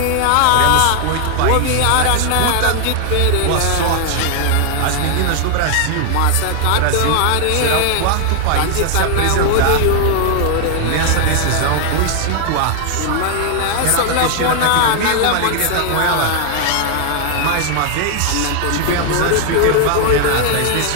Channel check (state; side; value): different; both; correlation 0.00